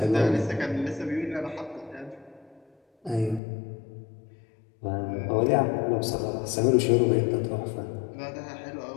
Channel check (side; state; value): right; drops out; at 3.4 s